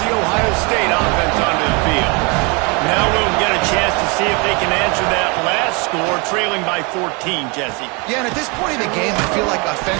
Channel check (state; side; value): quieter; left; 30.5 dB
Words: the Ohio State offense onto the field. Now we'll get a chance to see if they can answer that last score, trailing by 14, Jesse. Yeah, and at this point in the game, I feel like